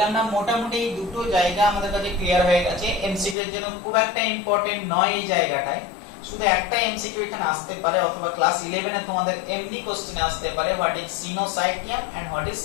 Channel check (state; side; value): drops out; right; at 3.4 s